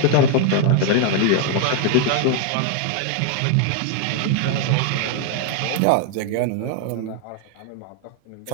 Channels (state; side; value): different; both; correlation 0.00